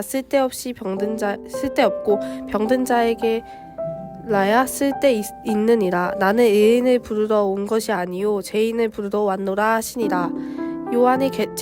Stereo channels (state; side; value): identical; both; correlation 1.00